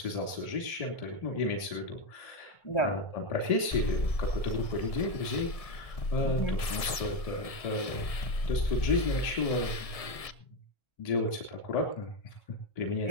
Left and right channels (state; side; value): late; right; 1.7 ms